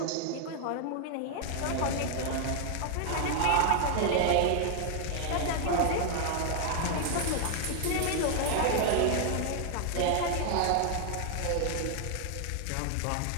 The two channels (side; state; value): both; different; correlation 0.00